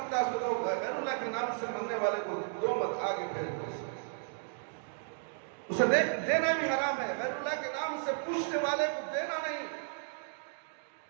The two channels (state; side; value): silent; left; digital silence